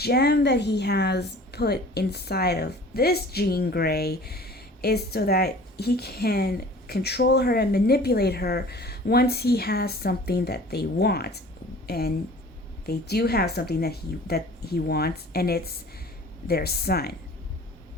that he has put inside of this Jean Grey is so that he can control her and manipulate her once he has something that they want. And they do have something that he wants, and it's their son.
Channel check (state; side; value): normal; both; correlation 0.46